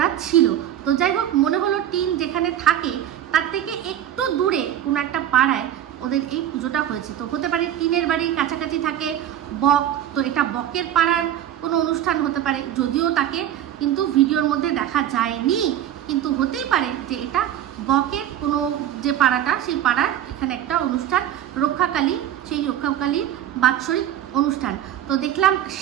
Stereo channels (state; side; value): quieter; left; 11.2 dB